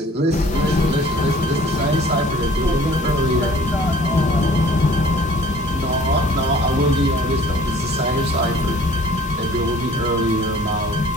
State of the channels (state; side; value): normal; both; correlation 0.51